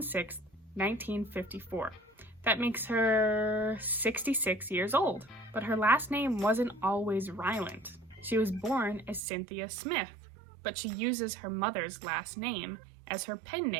6, 1954. That makes her 66 years old, but her last name wasn't always Ryland. She was born as Cynthia Smith, but she uses her mother's last name as her pen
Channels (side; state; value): left; drops out; at 9.2 s